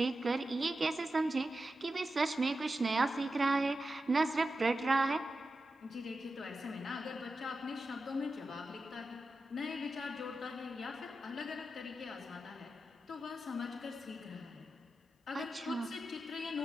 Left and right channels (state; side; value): normal; both; correlation 0.91